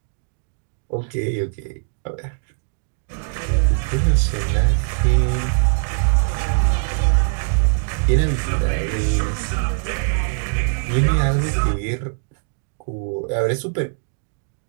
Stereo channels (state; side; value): silent; left; digital silence